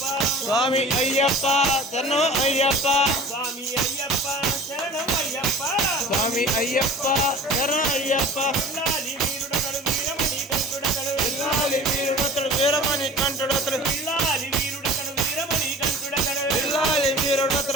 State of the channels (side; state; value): both; normal; correlation 0.42